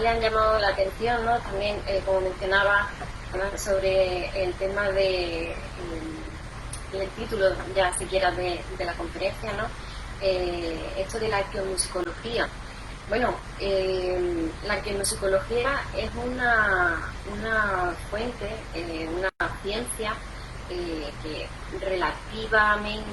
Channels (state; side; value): identical; both; correlation 1.00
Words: han llamado la atención, ¿no?, también, como mencionaba, sobre el tema del título, ya siquiera de la conferencia, ¿no?, esto de la arqueomusicología. Bueno, la arqueomusicología es una fuente, una ciencia que